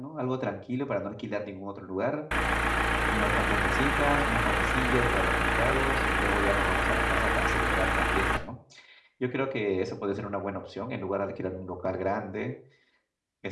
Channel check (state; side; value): identical; both; correlation 1.00